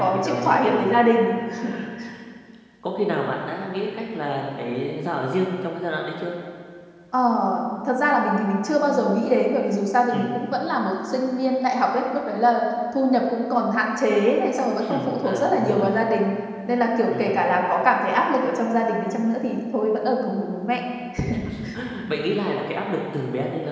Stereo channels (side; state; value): both; identical; correlation 1.00